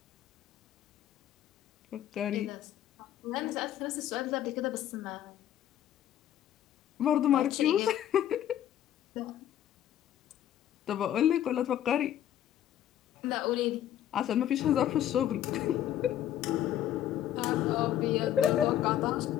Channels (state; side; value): quieter; right; 11.4 dB